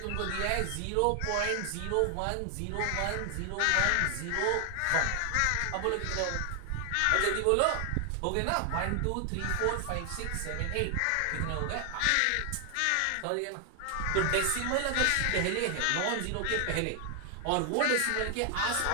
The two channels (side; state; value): both; different; correlation 0.00